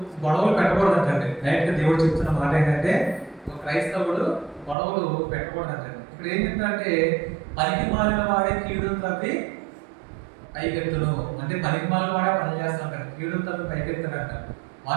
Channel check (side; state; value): left; drops out; at 4.8 s